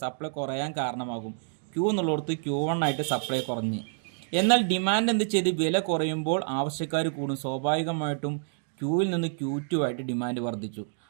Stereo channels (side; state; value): left; silent; digital silence